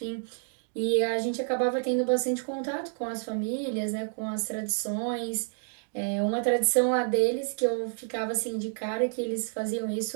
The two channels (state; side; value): silent; left; 55 dB below the other